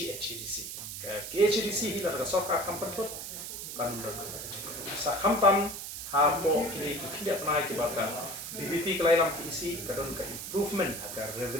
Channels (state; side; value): noise; right; hiss, 7 dB below the sound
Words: ke KHADC hi la Sorkar Pynthud kan sa khamtam ha po kini ki tidak pernah ki bakal BBP kelainan ke isi kadon ke improvement agar